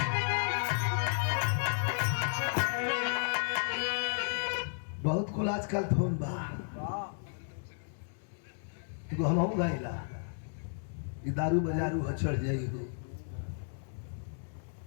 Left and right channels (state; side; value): silent; right; digital silence